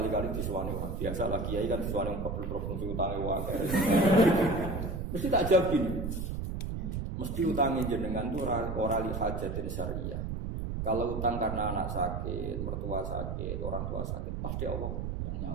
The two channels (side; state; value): right; noise; rumble, 3 dB below the sound